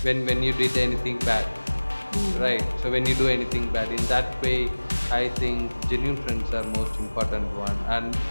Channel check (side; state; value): both; inverted; correlation -1.00